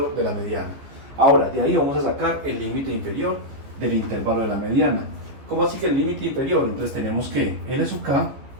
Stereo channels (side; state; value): left; late; 15 ms